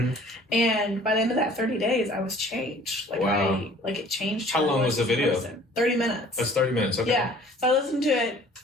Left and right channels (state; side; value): normal; both; correlation 0.52